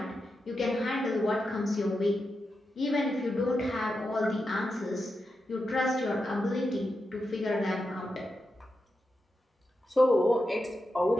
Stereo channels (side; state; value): both; normal; correlation 0.88